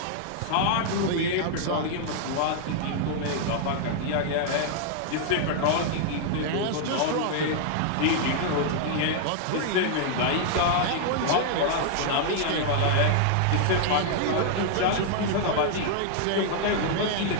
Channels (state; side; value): different; both; correlation -0.01